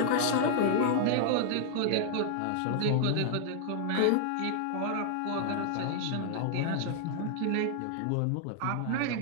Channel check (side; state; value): both; different; correlation -0.01